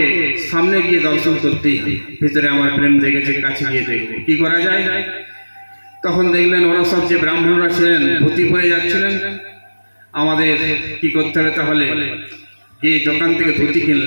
সামনে গিয়ে দর্শন করতেই, ভিতরে আমার প্রেম দেখেছে, কাছে গিয়ে দেখবো কি করা যায়। তখন দেখলেন ওরা সব যে ব্রাহ্মণরা ছিলেন ধুতি পরে যাচ্ছিলেন। আমাদের কি করতে হবে তাহলে, গিয়ে দোকান থেকে ধুতি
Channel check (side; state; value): both; inverted; correlation -1.00